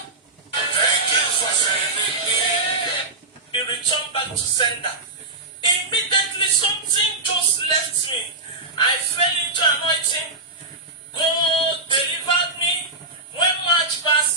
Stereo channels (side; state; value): left; quieter; 3.1 dB